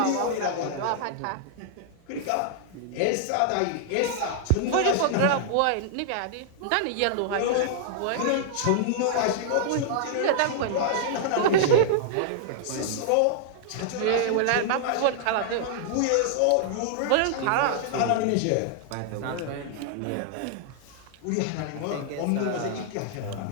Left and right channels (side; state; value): both; different; correlation -0.01